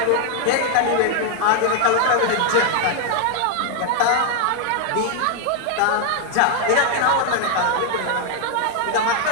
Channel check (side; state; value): both; different; correlation 0.00